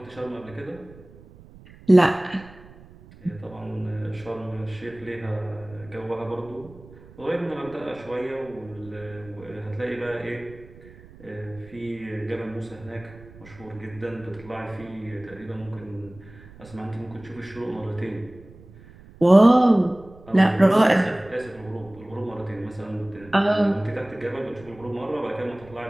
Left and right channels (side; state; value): right; noise; rumble, 21 dB below the sound